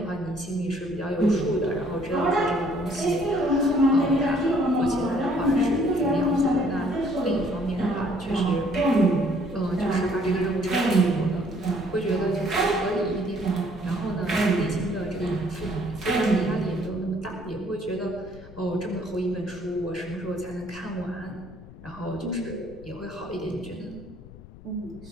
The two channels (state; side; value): noise; left; rumble, 18 dB below the sound